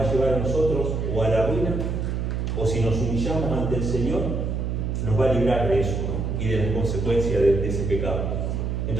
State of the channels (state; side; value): noise; right; hum, 1 dB below the sound